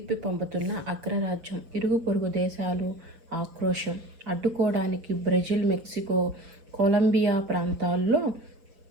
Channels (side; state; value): left; late; 6.2 ms